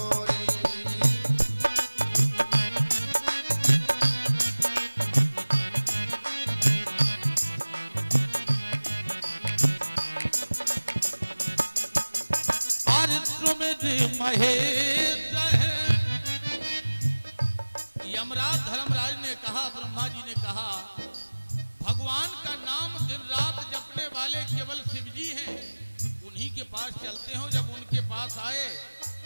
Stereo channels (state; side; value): inverted; both; correlation -1.00